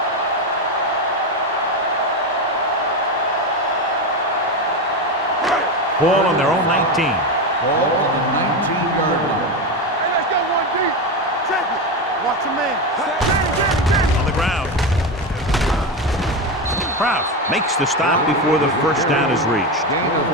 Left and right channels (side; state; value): both; normal; correlation 0.15